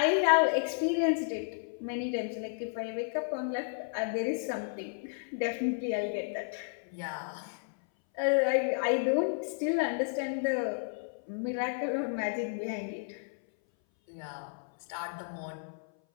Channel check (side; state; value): right; silent; 56 dB below the other